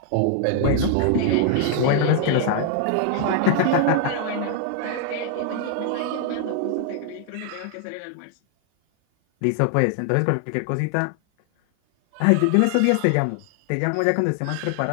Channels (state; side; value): different; both; correlation 0.00